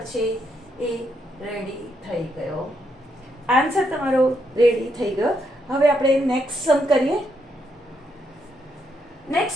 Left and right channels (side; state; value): both; normal; correlation 0.78